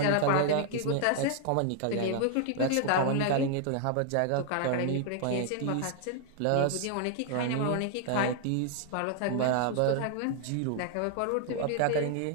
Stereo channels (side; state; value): both; different; correlation 0.00